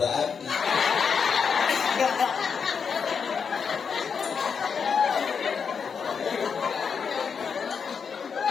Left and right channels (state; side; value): quieter; right; 6.2 dB